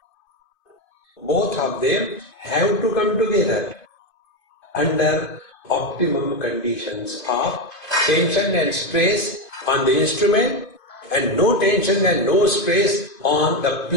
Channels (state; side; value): late; right; 2.5 ms